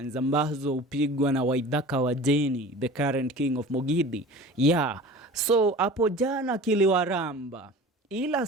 ambazo upigwa na Waithaka wa Jeni, the current king of Mogidi. So hapo jana kiliwaramba. Ila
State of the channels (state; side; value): normal; both; correlation 0.39